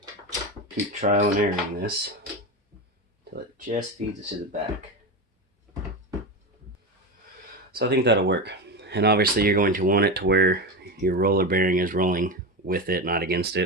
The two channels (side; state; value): both; normal; correlation 0.19